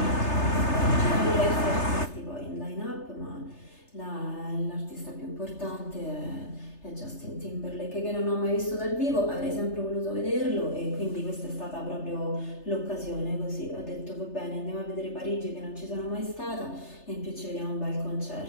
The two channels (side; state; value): right; late; 3.3 ms